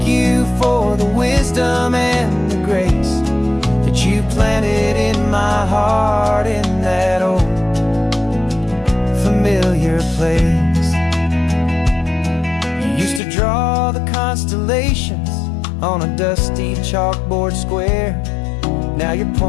you for the wisdom and the grace that you planted in my heart, in that old familiar place. You used to draw the constellations on a dusty chalkboard square. Now you're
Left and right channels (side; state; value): right; drops out; at 13.2 s